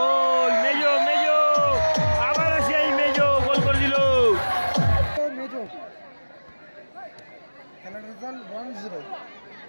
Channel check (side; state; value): both; inverted; correlation -1.00